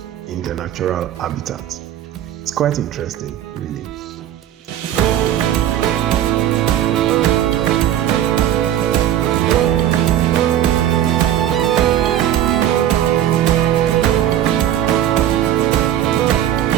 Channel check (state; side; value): quieter; left; 11.4 dB